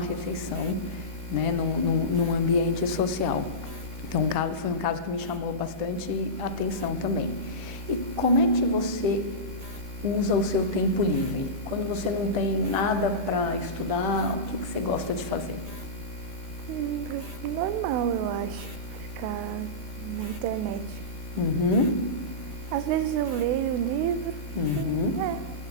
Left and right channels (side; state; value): left; late; 13 ms